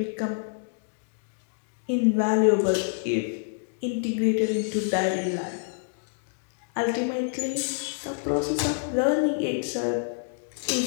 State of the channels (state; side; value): silent; right; digital silence